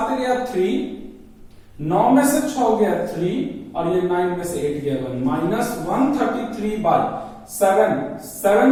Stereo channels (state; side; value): identical; both; correlation 1.00